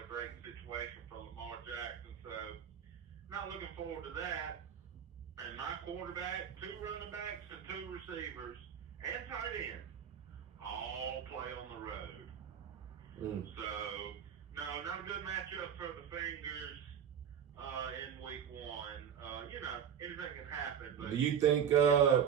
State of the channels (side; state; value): left; quieter; 8.2 dB